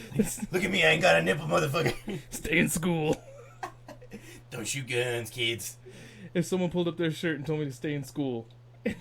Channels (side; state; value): both; identical; correlation 1.00